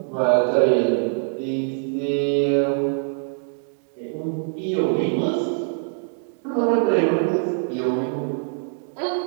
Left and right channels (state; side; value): silent; left; digital silence